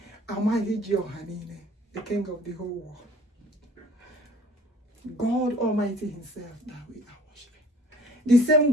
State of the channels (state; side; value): normal; both; correlation 0.51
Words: Almighty Johanine, the king of the whole world. God Almighty himself that we are worshiping. The same